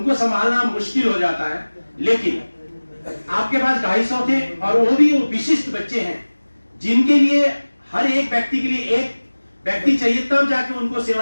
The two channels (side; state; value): both; inverted; correlation -1.00